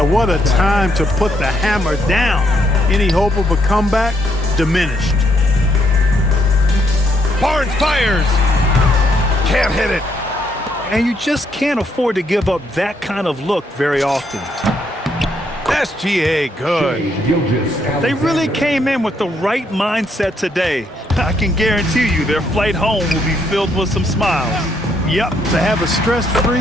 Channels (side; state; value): both; normal; correlation 0.74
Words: a time to put the hammer down. Any hope of a comeback? Diminished. Barnes fires. Can't hit it. And you just can't afford to give up that kind of look very often. SGA good. They really came in with the right mindset today. I can guarantee you their flight home will be filled with some smiles. Yep, to have a